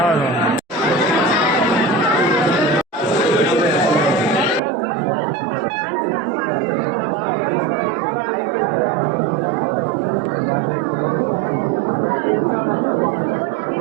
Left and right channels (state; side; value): drops out; left; at 4.6 s